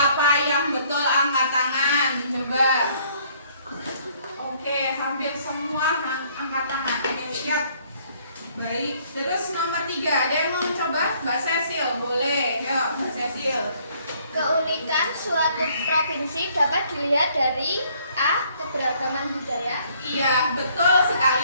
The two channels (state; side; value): inverted; both; correlation -0.63